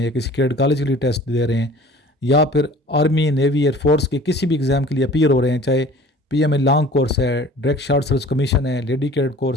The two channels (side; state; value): both; normal; correlation 0.46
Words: या किसी कैडेट कॉलेज के लिए टेस्ट दे रहे हैं या फिर आर्मी, नेवी, एयरफोर्स के किसी भी एग्ज़ाम के लिए अपीयर हो रहे हैं, चाहे PMA लॉन्ग कोर्स है, डायरेक्ट शॉर्ट सर्विस कमीशन है, लेडी कैडेट